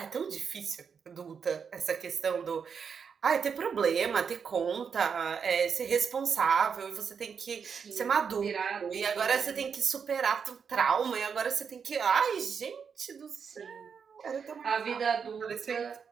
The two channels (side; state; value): left; quieter; 6.4 dB